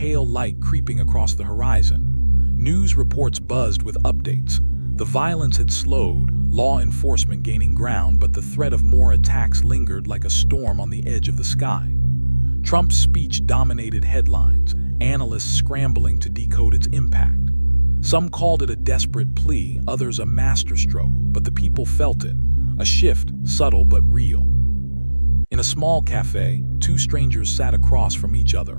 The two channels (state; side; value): inverted; both; correlation -1.00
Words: light creeping across the horizon. News reports buzzed with updates. The violence had slowed, law enforcement gaining ground, but the threat of more attacks lingered like a storm on the edge of the sky. Trump's speech dominated headlines, analysts scrambling to decode its impact. Some called it a desperate plea, others a masterstroke, but the people felt it, a shift, subtle but real. In a small cafe, two strangers sat across from each